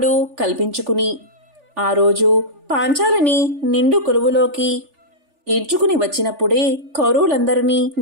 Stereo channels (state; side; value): late; left; 3.4 ms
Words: కల్పించుకుని ఆ రోజు పాంచాలిని నిండు కొలువులోకి ఈడ్చుకుని వచ్చినప్పుడే కౌరవులందరినీ